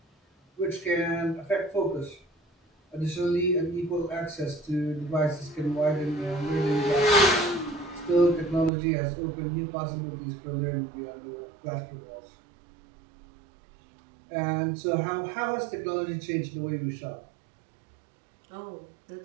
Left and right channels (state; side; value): drops out; left; at 8.7 s